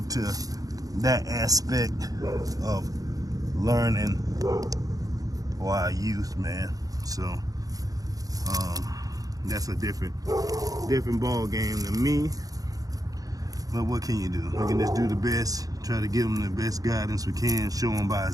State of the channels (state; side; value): late; left; 0.17 ms